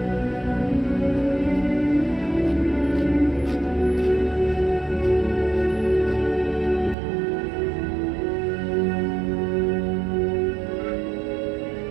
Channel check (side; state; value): left; drops out; at 7.0 s